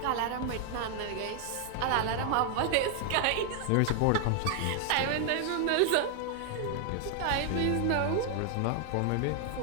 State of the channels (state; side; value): different; both; correlation 0.00